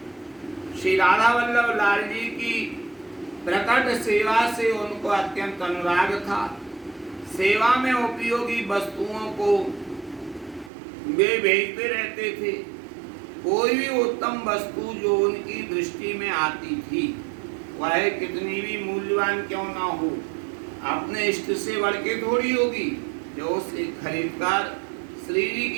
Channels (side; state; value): left; drops out; at 10.7 s